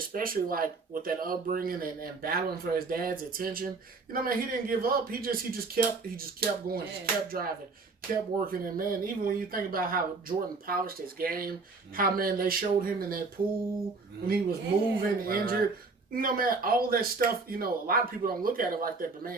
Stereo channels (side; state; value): left; quieter; 4.0 dB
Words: with that upbringing and battling for his dad's attention, he didn't give up. He just kept going, just kept driving, kept working. And, man, even when you think about how Jordan polished his game, how, man, they showed him in that pool when he was moving, injured. Right. Man, all that stuff, a lot of people don't look at it like that, but,